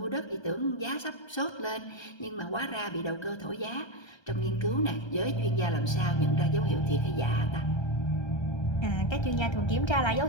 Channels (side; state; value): right; late; 1.3 ms